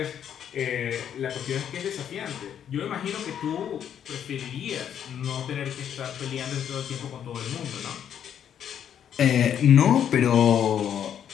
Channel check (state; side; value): quieter; right; 9.2 dB